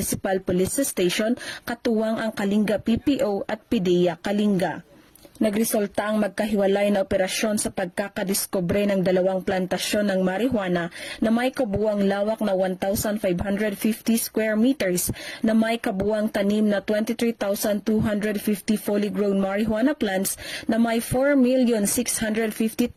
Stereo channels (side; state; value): both; identical; correlation 1.00